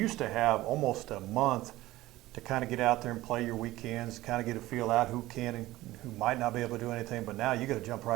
to have almost a month to kind of get out there and play your weekends, kind of get a feel out who can and who might not be able to do anything, but now you got to jump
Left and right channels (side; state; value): left; quieter; 17.1 dB